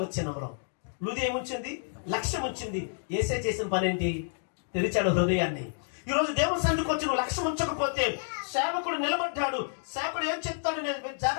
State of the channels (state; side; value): silent; right; digital silence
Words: వచనంలో లూదియా ఏముంచింది? లక్ష్యం ఉంచింది. యేసే చేసిన పని ఏంటి? తెరిచాడు హృదయాన్ని. ఈ రోజు దేవుని సన్నిధికి వచ్చి నువ్వు లక్ష్యం ఉంచకపోతే, సేవకుడు నిలబడ్డాడు, సేవకుడు ఏం చెప్తాడు నేను